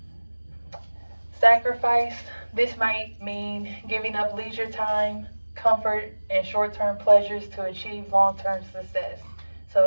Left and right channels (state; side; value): inverted; both; correlation -1.00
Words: Sacrifice. This might mean giving up leisure time, comfort, and short-term pleasures to achieve long-term success. So